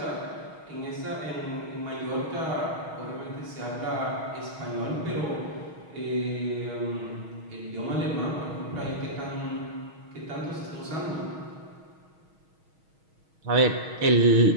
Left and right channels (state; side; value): late; left; 6.3 ms